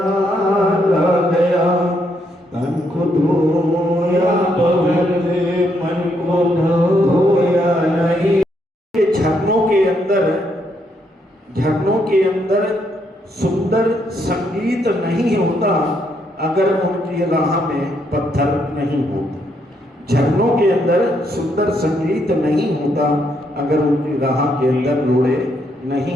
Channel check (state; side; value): normal; both; correlation 0.75